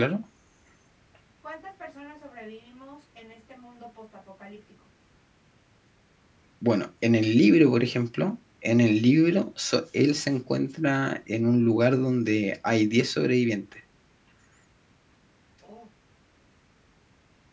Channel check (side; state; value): both; identical; correlation 1.00